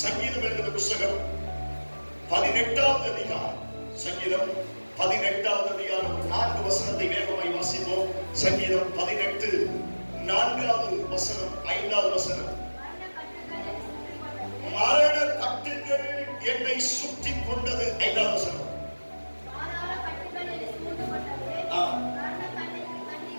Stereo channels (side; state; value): both; inverted; correlation -1.00